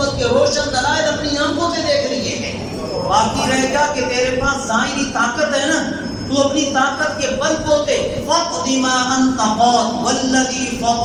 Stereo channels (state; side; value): identical; both; correlation 1.00